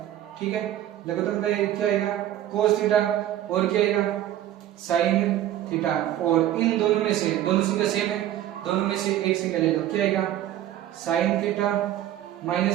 ठीक है, लघुत्तम का क्या आएगा cos थीटा और क्या आएगा sin थीटा, और इन दोनों में से दोनों संख्या सेम है, दोनों में से एक संख्या ले लो, क्या आएगा sin थीटा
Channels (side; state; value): left; quieter; 12.5 dB